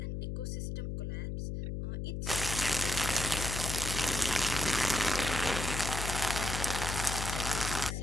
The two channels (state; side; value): noise; left; hum, 3 dB below the sound